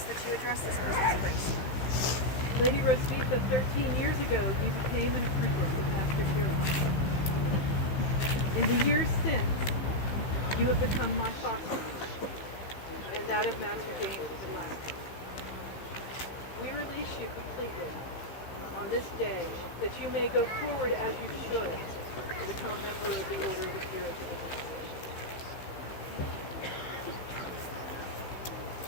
that you address this business, please. Lady Hrosvitha, 13 years ago, you became an apprentice of Master Hrosvitha. In the years since, you have become my foster and that of Master James at last. We release you completely on this day that you may go forward as you should to become a member of the Order of the Peerage of the Commonwealth.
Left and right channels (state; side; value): late; right; 15 ms